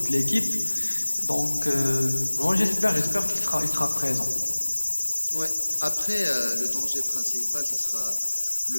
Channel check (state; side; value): inverted; both; correlation -1.00